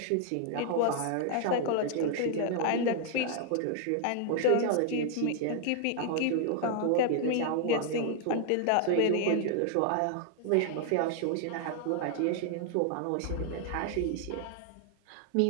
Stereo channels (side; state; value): both; different; correlation 0.00